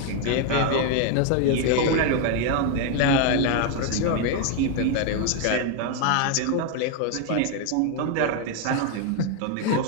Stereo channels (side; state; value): both; different; correlation 0.01